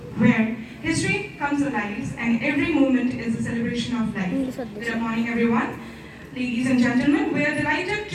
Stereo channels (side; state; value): both; identical; correlation 1.00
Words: where history comes alive and every moment is a celebration of life. Good morning, everyone. Ladies and gentlemen, we are delighted